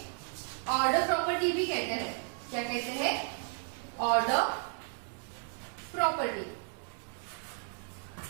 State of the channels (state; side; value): silent; left; 55 dB below the other